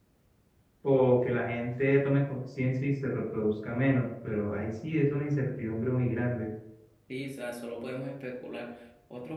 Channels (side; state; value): both; identical; correlation 1.00